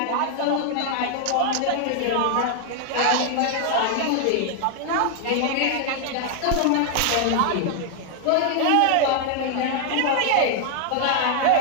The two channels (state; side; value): different; both; correlation 0.00